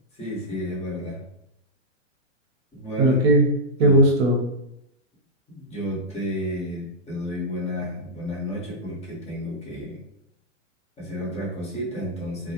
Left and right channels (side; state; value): both; normal; correlation -0.09